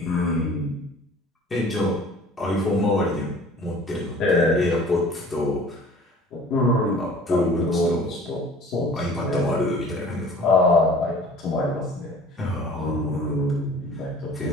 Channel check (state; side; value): normal; both; correlation 0.47